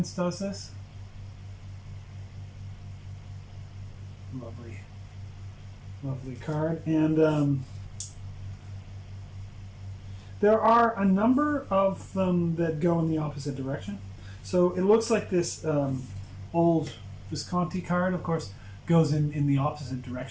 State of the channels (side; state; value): both; identical; correlation 1.00